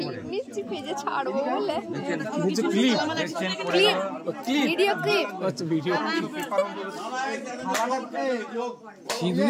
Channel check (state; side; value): identical; both; correlation 1.00